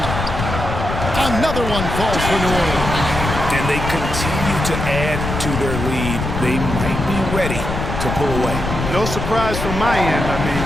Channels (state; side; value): noise; left; rumble, 4 dB below the sound